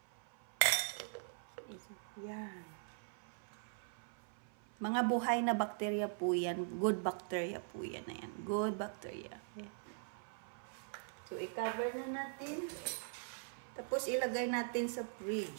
Yan. Mga buhay na bakterya po yan. Good bacteria po yan. Ayan. Good bacteria. Ayan. So, i-cover na natin. Tapos, ilagay natin sa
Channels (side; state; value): left; silent; 50 dB below the other